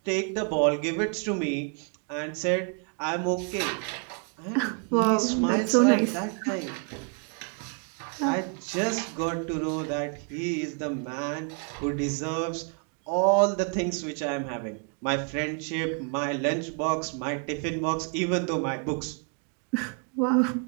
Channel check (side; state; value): left; quieter; 40.0 dB